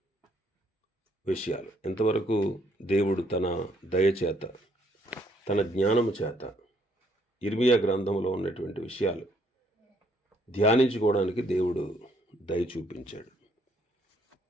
విషయాలు. ఇంతవరకు దేవుడు తన దయచేత, తన జ్ఞానము చేత ఇర్మియా గ్రంథంలో ఉన్నటువంటి విషయాలు ధ్యానించుకోవడానికి దేవుడు దయ చూపించాడు.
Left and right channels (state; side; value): normal; both; correlation 0.68